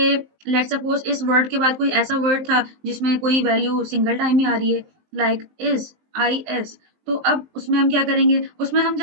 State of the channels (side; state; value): left; late; 19 ms